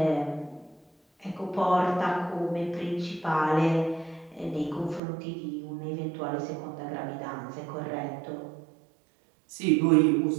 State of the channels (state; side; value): drops out; left; at 5.0 s